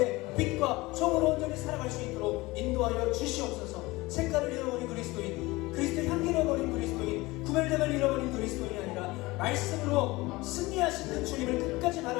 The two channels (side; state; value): right; quieter; 21.3 dB